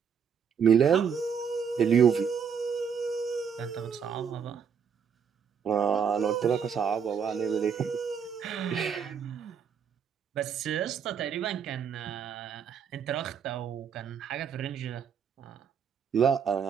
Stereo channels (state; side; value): quieter; left; 7.1 dB